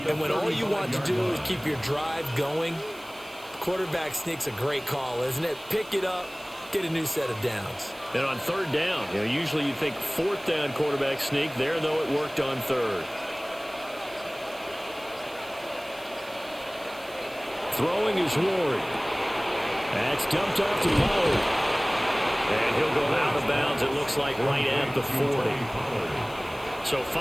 And when all you want to do is keep your drive going, quarterback sneak's a great call, isn't it? Pick it up, get a new set of downs. And on 3rd down, usually you think 4th down quarterback sneak. There, though, it worked on 3rd. Throwing is Ward. That's dumped off to Pollard. And he'll go out of bounds, it looks like, right at the 40. So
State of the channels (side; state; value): right; noise; hiss, 22 dB below the sound